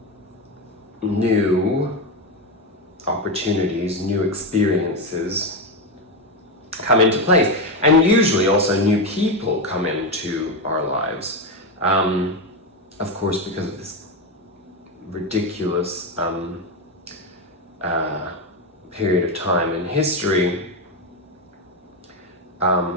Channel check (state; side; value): normal; both; correlation 0.11